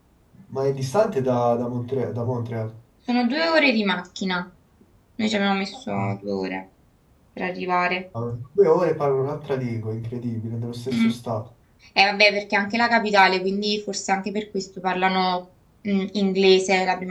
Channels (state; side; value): identical; both; correlation 1.00